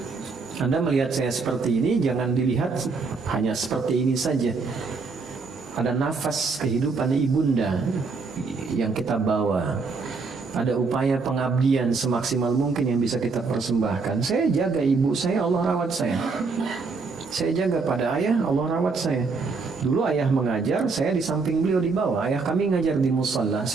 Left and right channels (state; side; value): quieter; left; 4.4 dB